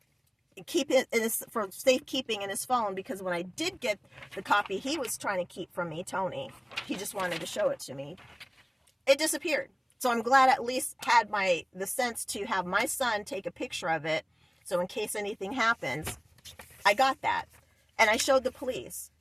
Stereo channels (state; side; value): identical; both; correlation 1.00